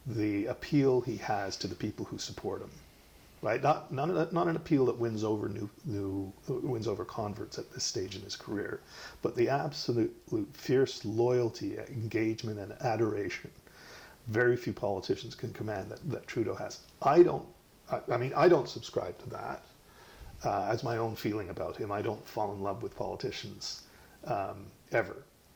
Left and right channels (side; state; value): both; identical; correlation 1.00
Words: the appeal he has to the people who support him. Right? Not an appeal that wins over wins over converts at this stage in his career, but the absolute fierce loyalty, engagement, and adoration very few politicians can command that Trudeau has. I don't subscribe to that as my own feeling about him. I don't fall in love with politicians ever.